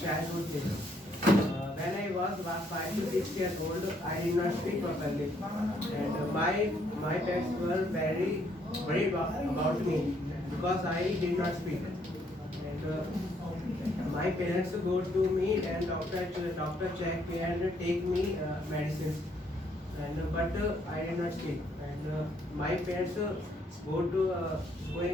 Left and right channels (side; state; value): both; normal; correlation 0.69